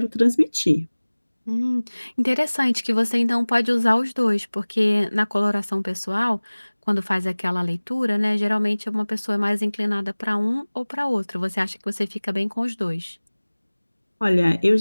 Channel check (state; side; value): inverted; both; correlation -1.00